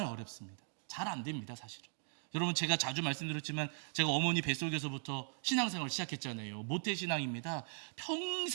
어렵습니다. 잘 안 됩니다 사실은. 여러분 제가 자주 말씀드렸지만 제가 어머니 뱃속에서부터 신앙생활을 시작했잖아요. 모태신앙입니다.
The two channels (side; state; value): left; silent; 52 dB below the other